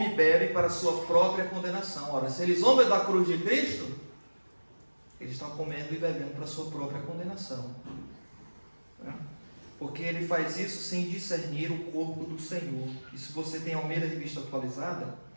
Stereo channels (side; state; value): both; inverted; correlation -1.00